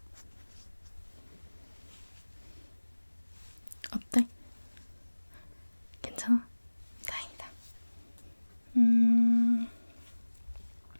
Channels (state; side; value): inverted; both; correlation -1.00